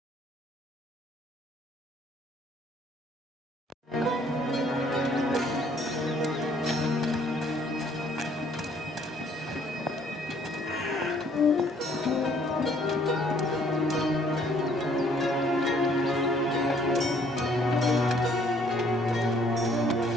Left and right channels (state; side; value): normal; both; correlation 0.62